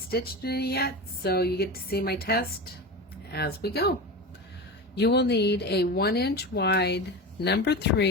it yet, so you get to see my test as we go. You will need a 1-inch wide number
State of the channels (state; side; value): normal; both; correlation 0.26